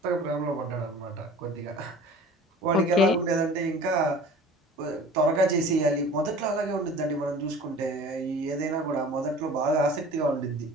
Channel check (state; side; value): normal; both; correlation 0.43